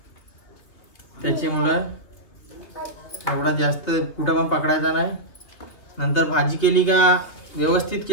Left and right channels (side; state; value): right; late; 2.6 ms